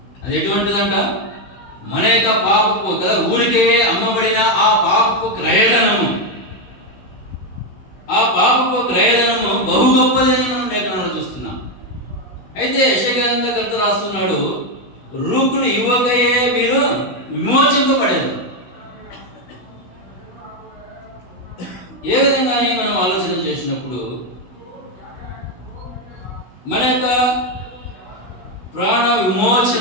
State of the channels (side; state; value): right; late; 16 ms